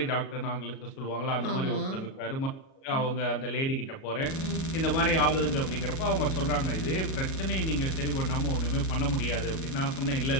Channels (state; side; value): late; right; 37 ms